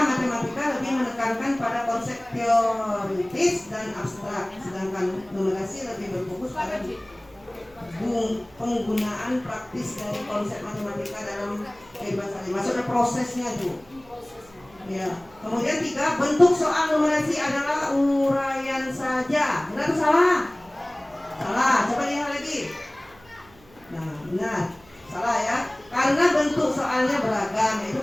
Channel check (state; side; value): noise; right; hum, 27 dB below the sound